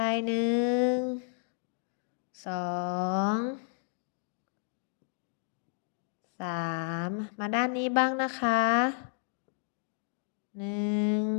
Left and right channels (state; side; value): silent; right; 56 dB below the other